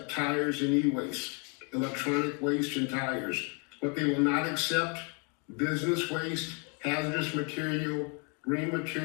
tires and e-waste, electronic waste and tires. What they will not accept: business waste, hazardous material, green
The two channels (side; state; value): right; quieter; 34.0 dB